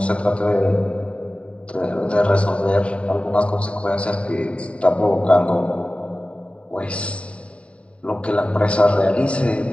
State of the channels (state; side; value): late; right; 0.062 ms